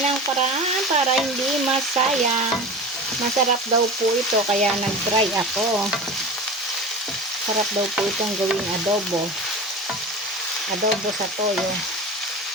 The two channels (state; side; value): normal; both; correlation 0.32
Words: ang paraan para hindi masayang. Masarap daw po ito, kaya nag-try ako. Sarap daw po itong gawing adobo. Adobo sa toyo.